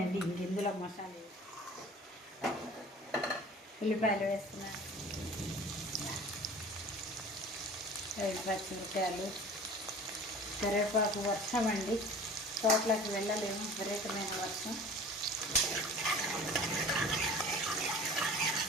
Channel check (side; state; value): both; normal; correlation 0.43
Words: ఇంక ఇందులో మసాలా ఉల్లిపాయలు వేస్తున్నాను, 5 పచ్చిమిరపకాయలు, కరివేపాకు. వర్షం అండి, తోటలోకి వెళ్ళలేము, విపరీతమైన వర్షం.